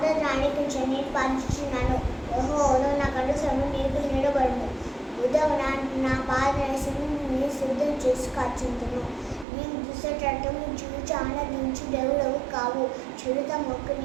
ఆలకించు. నేను పాలించుచున్నాను. యెహోవాను నా కనుసరము నీకు నిలబడును. ఉదయం నా పాదరసముని సిద్ధం చేసి కాచుంటును. నీవు దుష్టటము చూచి ఆనందించు దేవుడవు కావు. చిరుత మొక్క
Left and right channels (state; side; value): drops out; left; at 9.5 s